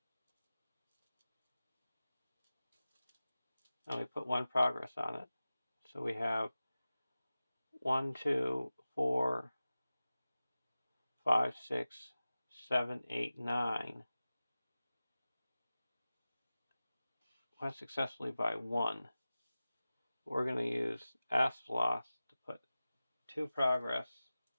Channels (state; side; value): inverted; both; correlation -0.96